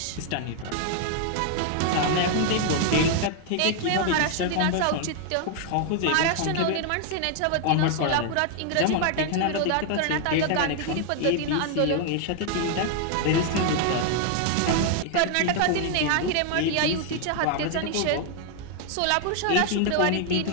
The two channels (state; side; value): different; both; correlation 0.00